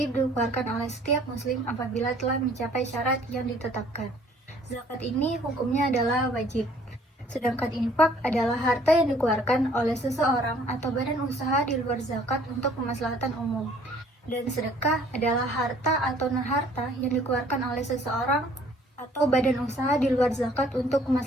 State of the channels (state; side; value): normal; both; correlation 0.57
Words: dikeluarkan oleh setiap muslim apabila telah mencapai syarat yang ditetapkan. Zakat ini hukumnya adalah wajib. Sedangkan infak adalah harta yang dikeluarkan oleh seseorang atau badan usaha di luar zakat untuk kemaslahatan umum. Dan sedekah adalah harta atau non-harta yang dikeluarkan oleh seseorang atau badan usaha di luar zakat untuk